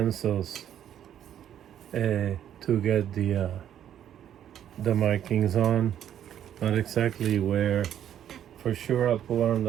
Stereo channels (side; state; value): left; quieter; 10.3 dB